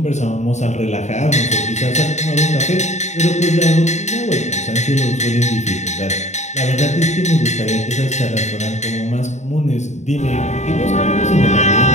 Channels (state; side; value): late; right; 0.34 ms